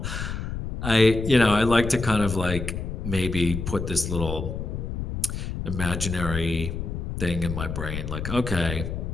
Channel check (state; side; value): noise; left; rumble, 5 dB below the sound